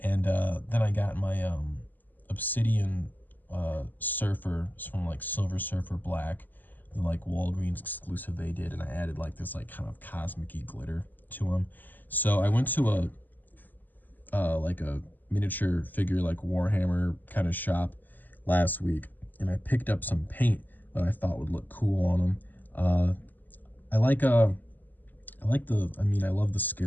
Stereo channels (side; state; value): right; late; 0.086 ms